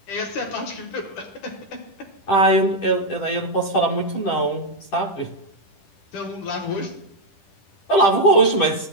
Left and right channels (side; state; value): right; late; 10 ms